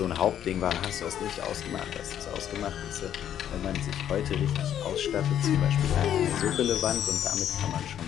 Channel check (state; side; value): quieter; right; 10.2 dB